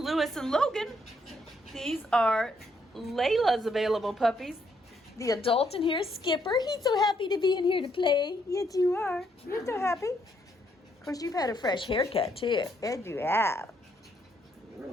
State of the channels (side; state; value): both; normal; correlation 0.73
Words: and Logan. These are Layla's available puppies. The adult in here is Skipper. He's so happy to be in here to play. Yes, you are. You're so happy. Of course, you've had a fresh haircut, too. Yes, you have.